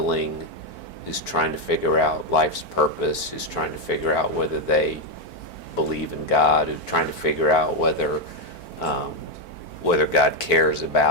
who's trying to figure out life's purpose, who's trying to figure out whether they believe in God, who's trying to figure out whether God cares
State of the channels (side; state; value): right; late; 4.5 ms